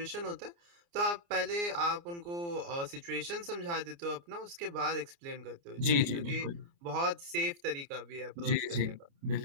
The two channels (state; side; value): late; left; 29 ms